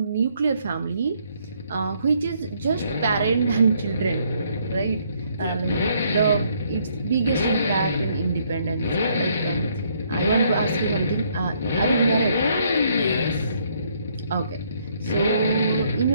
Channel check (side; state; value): both; inverted; correlation -0.68